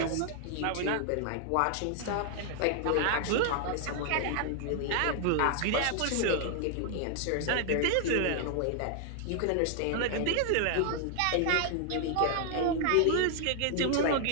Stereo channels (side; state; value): both; different; correlation 0.00